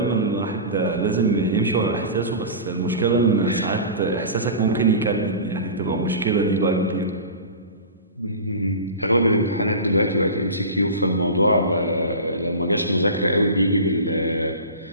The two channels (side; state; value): both; inverted; correlation -0.32